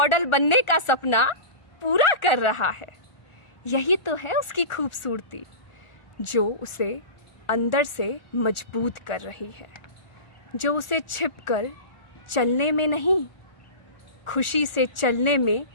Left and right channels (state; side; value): late; right; 1.4 ms